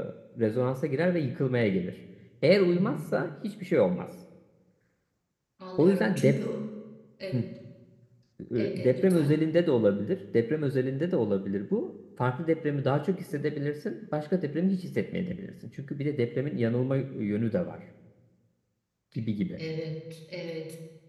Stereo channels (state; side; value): identical; both; correlation 1.00